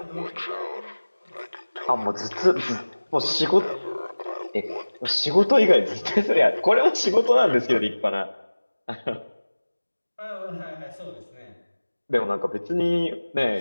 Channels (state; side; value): inverted; both; correlation -1.00